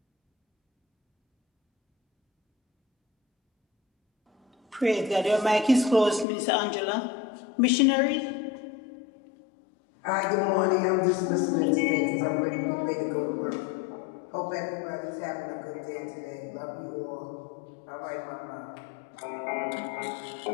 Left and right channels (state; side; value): drops out; right; at 6.2 s